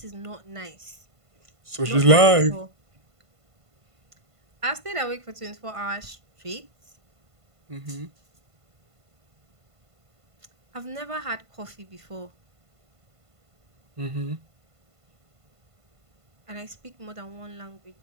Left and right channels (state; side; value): late; left; 1.5 ms